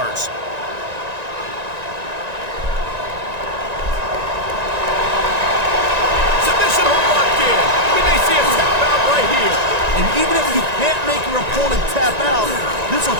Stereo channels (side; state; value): left; late; 1.9 ms